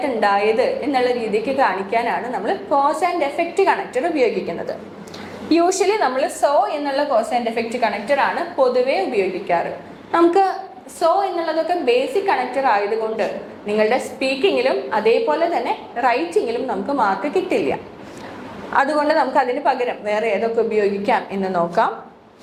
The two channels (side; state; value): both; identical; correlation 1.00